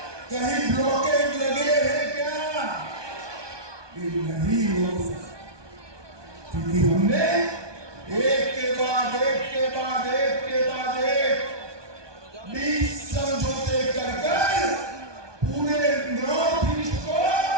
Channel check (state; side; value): late; left; 1.2 ms